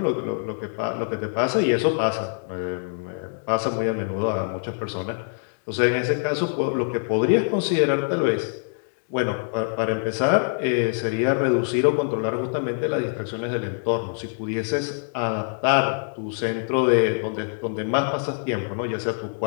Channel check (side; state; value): right; silent; digital silence